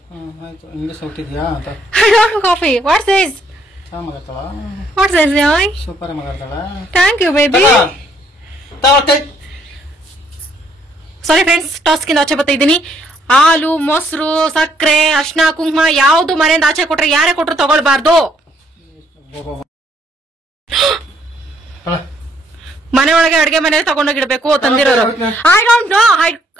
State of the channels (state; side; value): normal; both; correlation 0.68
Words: English ಹುಟ್ಟಿದ್ಯಾ ಅಂತ. I don't know coffee. What's this? What's this, boy? Super ಮಗಳ್ತಾಳ. Thank you, baby. Sorry friends, ಟಾಸ್ಕಿಂದ ಆಚೆ ಬರ್ತಾ ಇದ್ದೀನಿ. ಹಾಲು, ಮೊಸರು, ಸಕ್ಕರೆ, ಅರ್ಶಿನ, ಕುಂಕುಮ ಯಾವ್ದು ಮನೆಯಿಂದ ಆಚೆ ಕೊಟ್ರೆ ಯಾರೇ ಕೊಟ್ರು ತಗೊಳ್ಬಾರ್ದು. ಮನೆ ಒಳಗೆ ಅಡ್ಗೆ ಮನೇಲಿ ತಗೊಂಡೋಗಿಡ್ಬೇಕು ತಂದಿರೋರು. I don't know,